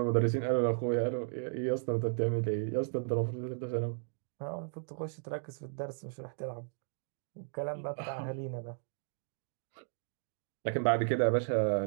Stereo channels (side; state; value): left; silent; digital silence